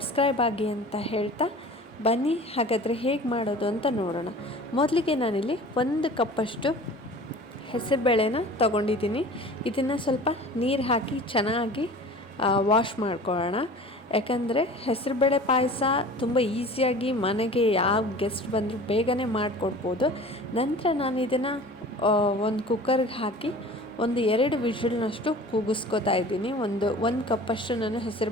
ಆಗಿ ಅಂತ ಹೇಳ್ತಾ ಬನ್ನಿ, ಹಾಗಾದರೆ ಹೇಗೆ ಮಾಡೋದು ಅಂತ ನೋಡೋಣ. ಮೊದಲಿಗೆ ನಾನಿಲ್ಲಿ 1 ಕಪ್ಪಷ್ಟು ಹೆಸರುಬೇಳೆನ ತೊಗೊಂಡಿದ್ದೀನಿ. ಇದನ್ನು ಸ್ವಲ್ಪ ನೀರು ಹಾಕಿ ಚೆನ್ನಾಗಿ ವಾಶ್ ಮಾಡ್ಕೊಳ್ಳೋಣ. ಯಾಕಂದರೆ ಹೆಸರುಬೇಳೆ ಪಾಯಸ ತುಂಬ ಈಸಿಯಾಗಿ ಮನೆಗೆ ಯಾವ ಗೆಸ್ಟ್ ಬಂದರೂ ಬೇಗನೆ ಮಾಡಿಕೊಡ್ಬೋದು. ನಂತರ ನಾನು ಇದನ್ನು ಒಂದು ಕುಕ್ಕರ್ಗೆ ಹಾಕಿ 1-2 ವಿಷಲ್ನಷ್ಟು ಕೂಗಿಸ್ಕೊತಾ ಇದ್ದೀನಿ. ಒಂದು ಕಪ್ಪಷ್ಟು ನಾನು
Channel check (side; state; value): both; normal; correlation 0.42